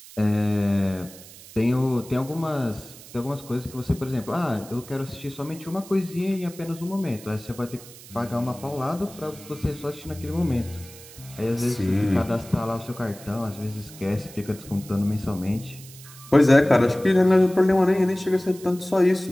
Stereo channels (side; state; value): right; noise; hiss, 18 dB below the sound